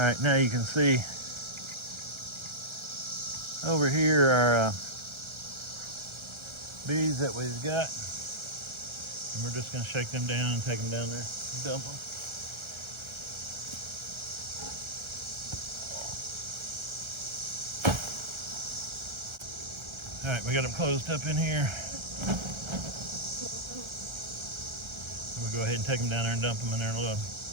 now you can see over here are bees that we've got. And we're just gonna shake them down and take them down there and dump them. All right, we got them closed up in here. We'll go ahead and take them down there and dump them in their little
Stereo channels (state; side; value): late; left; 1.3 ms